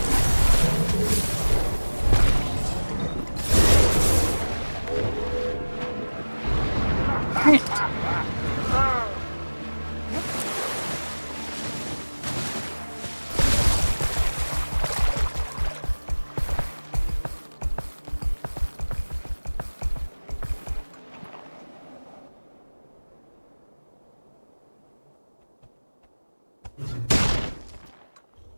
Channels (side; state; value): both; inverted; correlation -1.00